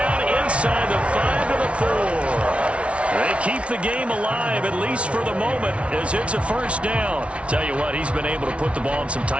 inside the 5 to the 4. They keep the game alive, at least for the moment, as it's a first down. Tell you what, he's been able to put the ball in some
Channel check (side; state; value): left; late; 0.061 ms